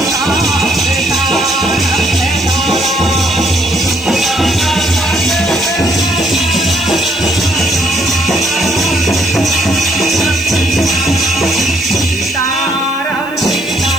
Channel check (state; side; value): noise; right; hiss, 25 dB below the sound